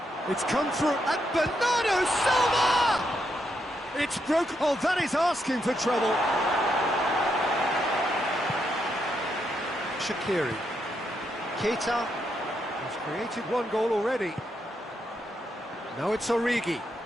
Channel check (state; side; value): normal; both; correlation 0.80